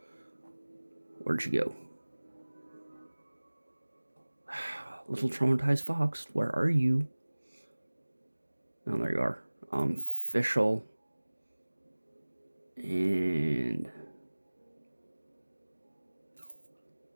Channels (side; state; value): both; inverted; correlation -1.00